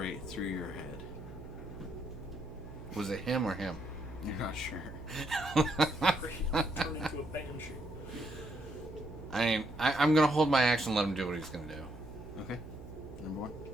through your head. Was it him or him? You're not sure. Turn into a banshee. I'm going to hold my action and let him do what he's going to do. Okay. Number 1.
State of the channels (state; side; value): noise; right; hum, 14 dB below the sound